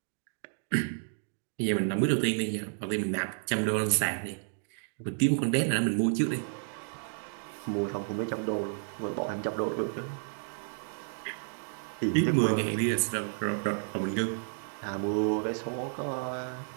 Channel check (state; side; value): silent; left; digital silence